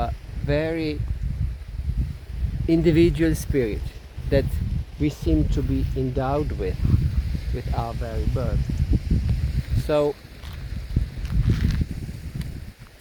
very individual spirit that we seem to be endowed with our very birth. So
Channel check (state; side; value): identical; both; correlation 1.00